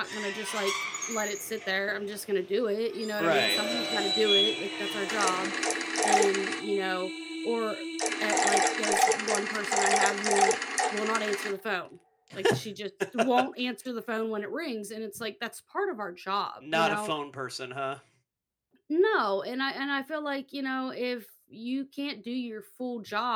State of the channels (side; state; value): both; identical; correlation 1.00